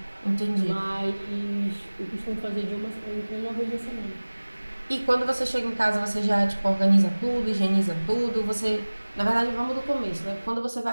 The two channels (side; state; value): both; inverted; correlation -1.00